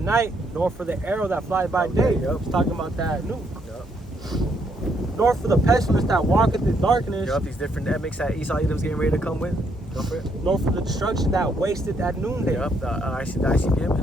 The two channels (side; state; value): both; normal; correlation 0.73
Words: nor for the arrow that flies by day. It's talking about that nuke. Nor for the pestilence that walketh in darkness. These different epicks that Esau Edom's getting ready to come with. Go for it. Nor for the destruction that wasteth at noonday. The ICBM